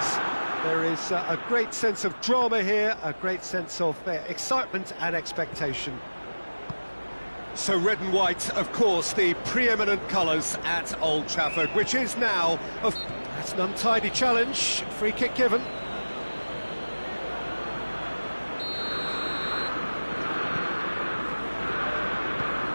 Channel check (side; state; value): both; inverted; correlation -1.00